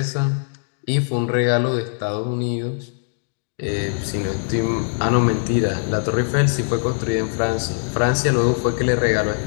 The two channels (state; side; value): silent; right; digital silence